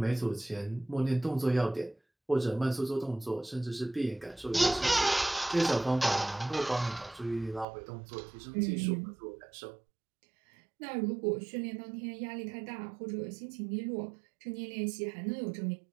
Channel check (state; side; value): drops out; left; at 7.7 s